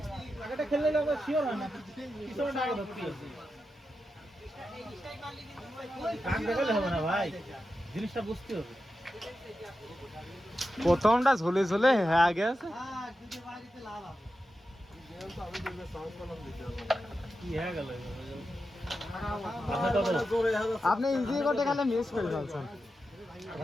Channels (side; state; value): both; normal; correlation 0.90